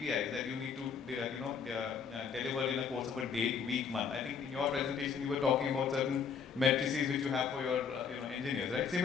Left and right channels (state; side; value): quieter; right; 6.5 dB